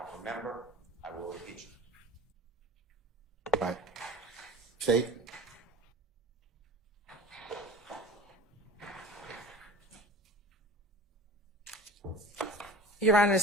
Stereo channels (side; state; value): both; normal; correlation 0.40